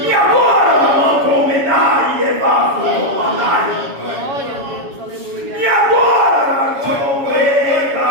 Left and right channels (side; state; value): left; late; 7.2 ms